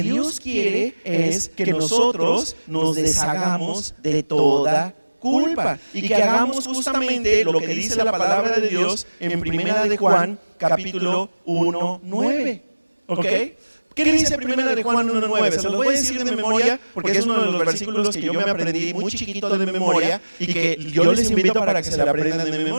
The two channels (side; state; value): both; inverted; correlation -1.00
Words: quiere es que nosotros nos deshagamos de toda culpa y que hagamos justamente lo que dice la palabra de Dios en Primera de Juan, capítulo 1:9. ¿Ok? ¿Qué dice Primera de Juan 1:9? Se los voy a decir de memoria porque es uno de los versículos que yo me aprendí muy chiquito de memoria y que yo les invito para que se la aprendan de